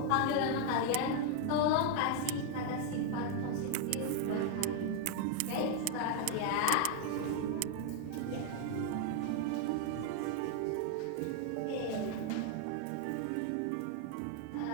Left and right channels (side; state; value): both; different; correlation 0.00